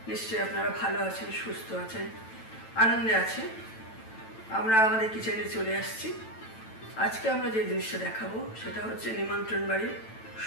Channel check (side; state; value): right; late; 9.0 ms